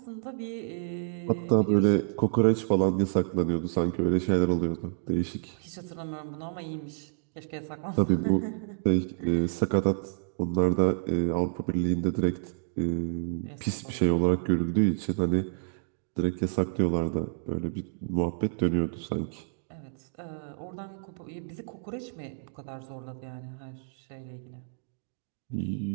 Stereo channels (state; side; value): silent; left; digital silence